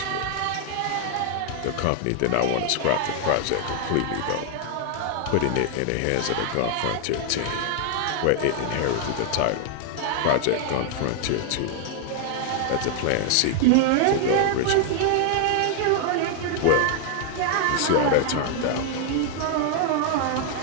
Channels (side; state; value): both; different; correlation 0.00